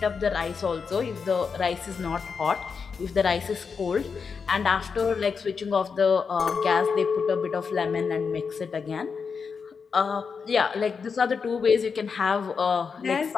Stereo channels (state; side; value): quieter; right; 5.6 dB